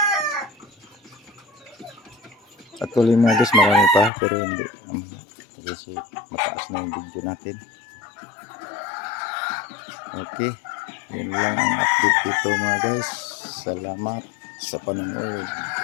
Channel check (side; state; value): right; drops out; at 4.1 s